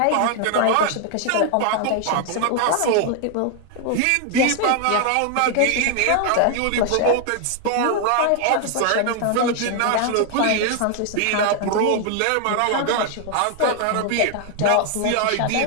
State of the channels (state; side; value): different; both; correlation 0.00